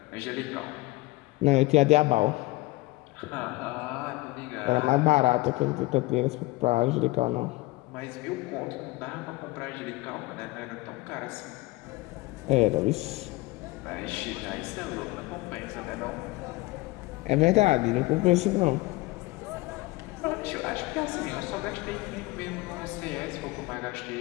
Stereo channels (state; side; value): quieter; right; 20.9 dB